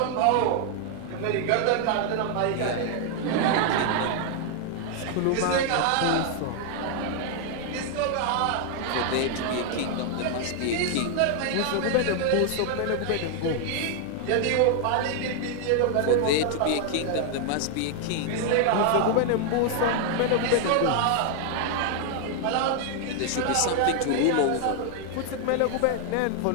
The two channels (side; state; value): both; different; correlation 0.00